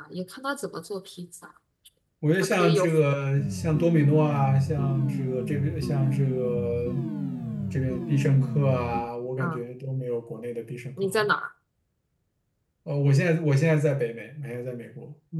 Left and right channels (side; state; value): both; identical; correlation 1.00